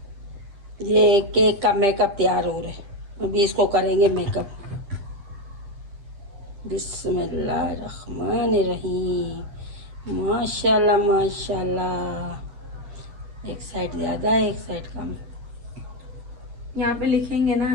ये केक का मेकअप तैयार हो रहा है, अभी इसको करेंगे मेकअप। बिस्मिल्लाहिर्रहमानिर्रहीम। माशाल्लाह माशाल्लाह। एक साइड ज़्यादा है, एक साइड कम। यहाँ पे लिखेंगे ना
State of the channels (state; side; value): late; left; 10 ms